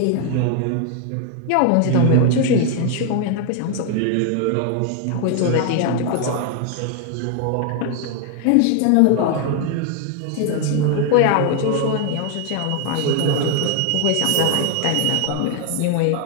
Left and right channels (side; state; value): both; different; correlation 0.01